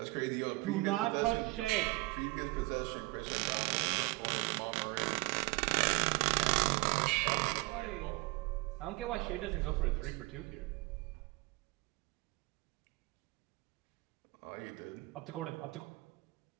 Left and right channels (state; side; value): quieter; left; 23.4 dB